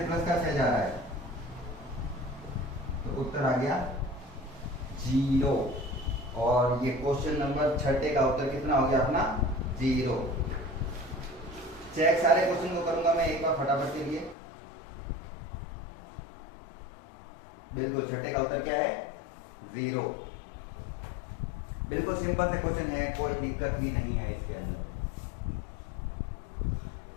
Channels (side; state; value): right; drops out; at 14.4 s